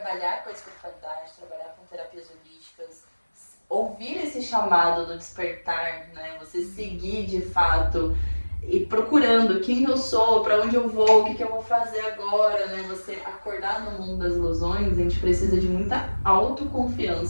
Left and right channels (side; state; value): both; inverted; correlation -1.00